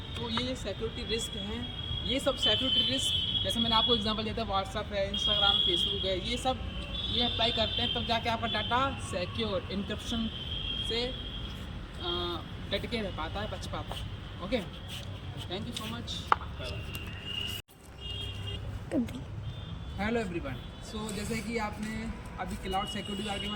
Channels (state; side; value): identical; both; correlation 1.00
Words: तो ये सिक्योरिटी रिस्क हैं. ये सब सिक्योरिटी रिस्क जैसे मैंने आपको एग्जांपल दिया था, व्हाट्सअप है, इंस्टाग्राम, फेसबुक है, ये सब ये अप्लाई करते हैं तब जाके आपका डाटा सिक्योर इनक्रिप्शन से डट के रह पाता है, बच पाता है. Okay, thank you so much. Hello everyone. So जैसे कि आपने अभी क्लाउड सिक्योरिटी के बारे में